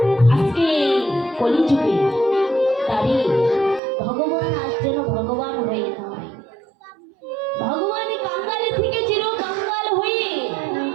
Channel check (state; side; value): drops out; left; at 3.8 s